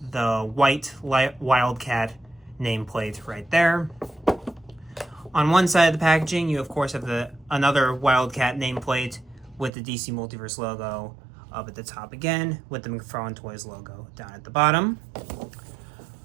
the white Wildcat nameplate right there. On one side of the packaging, you of course have another Wildcat nameplate with the DC Multiverse logo up at the top again, with the McFarlane Toys logo down at the bottom.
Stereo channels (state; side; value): drops out; left; at 9.7 s